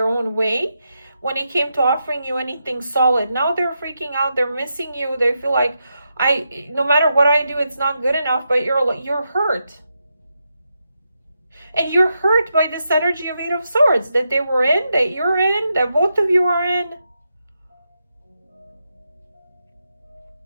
own way when it came to offering you anything solid. Now they're freaking out. They're missing you. They feel like, no matter what I do, it's not good enough, but you're hurt. And you're hurt by this energy of Eight of Swords that they were in, that you're in, that both of you are in.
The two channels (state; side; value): inverted; both; correlation -0.85